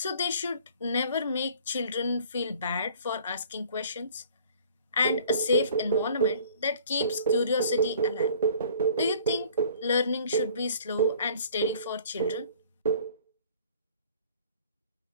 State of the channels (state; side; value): inverted; both; correlation -0.52